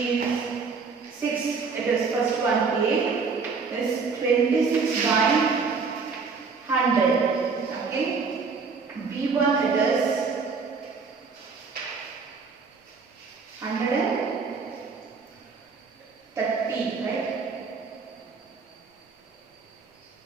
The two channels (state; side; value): quieter; left; 4.9 dB